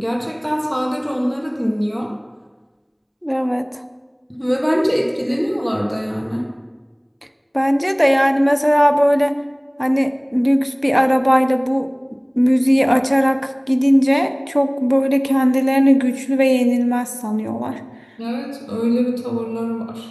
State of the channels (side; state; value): both; identical; correlation 1.00